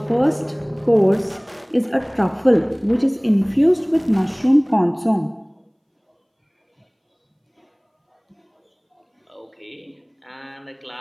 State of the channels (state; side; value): identical; both; correlation 1.00